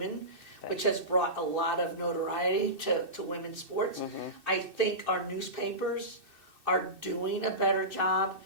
which has brought a lot of notoriety to women's sports. I think our newspapers are doing a better job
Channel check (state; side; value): late; left; 2.6 ms